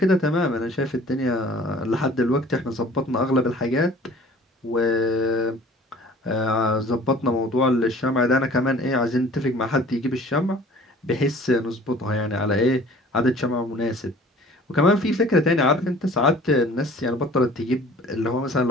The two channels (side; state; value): both; normal; correlation 0.49